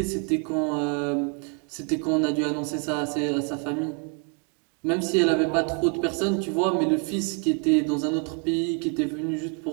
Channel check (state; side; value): quieter; left; 37.6 dB